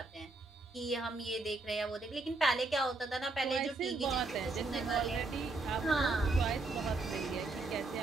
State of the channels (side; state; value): left; quieter; 3.3 dB